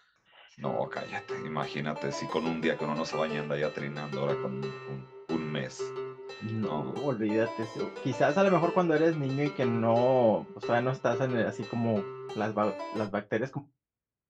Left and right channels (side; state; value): both; identical; correlation 1.00